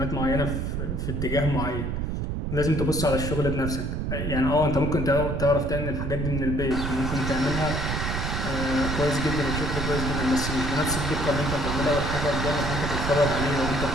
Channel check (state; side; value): noise; right; rumble, 2 dB below the sound